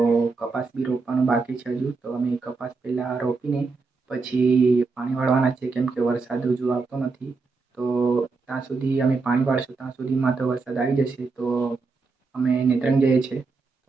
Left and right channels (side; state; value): left; quieter; 4.2 dB